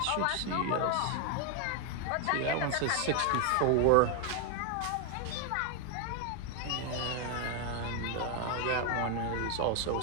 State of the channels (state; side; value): different; both; correlation 0.01